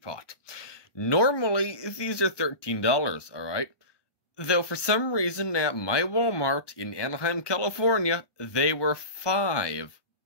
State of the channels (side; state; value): right; late; 1.2 ms